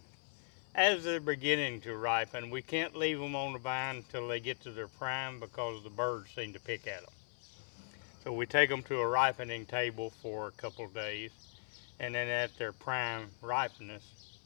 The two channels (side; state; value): right; silent; 52 dB below the other